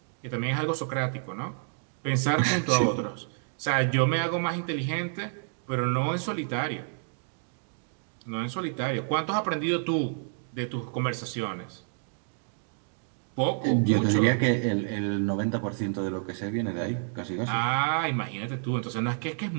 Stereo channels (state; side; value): silent; left; 59 dB below the other